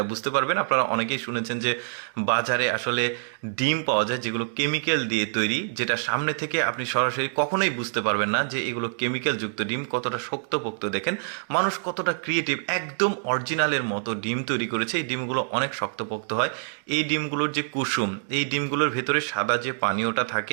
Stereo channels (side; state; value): left; silent; digital silence